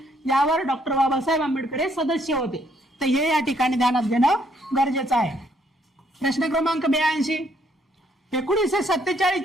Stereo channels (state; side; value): normal; both; correlation 0.69